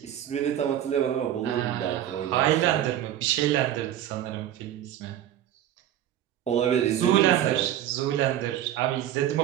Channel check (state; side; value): quieter; left; 11.6 dB